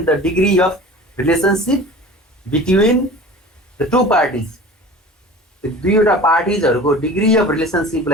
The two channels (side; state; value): both; normal; correlation 0.40